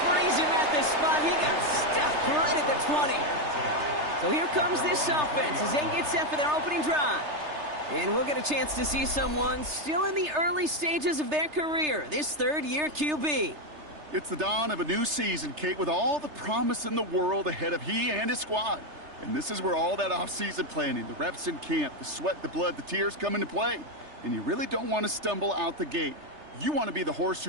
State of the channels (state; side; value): late; left; 3.3 ms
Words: freeze him at the spot. He got stuck right at the 20. So here comes this offense as they get set for their opening drive. And we'll get a chance to see someone still in the early stages of their career, this 3rd-year QB. It's the dawn of a new season, Kate, with all the promise in the world ahead of he and his squad. And this is where all that off-season planning, the reps in camp, the sweat, the blood, the tears come into play. And you really don't want to stumble out the gate. You want to be the horse